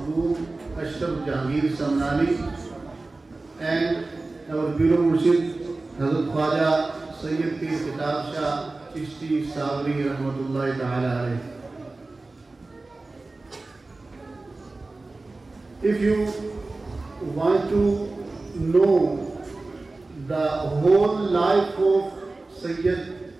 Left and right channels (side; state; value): left; quieter; 3.3 dB